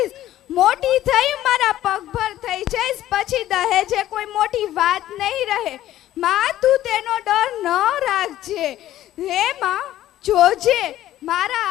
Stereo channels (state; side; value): quieter; right; 13.5 dB